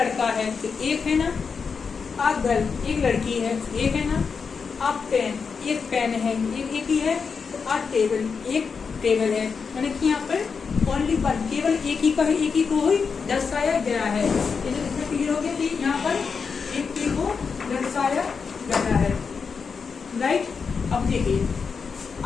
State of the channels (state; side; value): quieter; right; 5.6 dB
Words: है तो एक है ना, अब गर्ल एक लड़की है एक है ना, अब पेन एक पेन है एक ही है, तो अब टेबल एक टेबल है, यानी कि यहाँ पर ओनली वन, केवल एक ही का है, एक ही को ही दर्शाया गया है। इसमें क्लियर हो गया कि यहाँ पर एक ही को दर्शाया गया है, राइट। अब देखिए,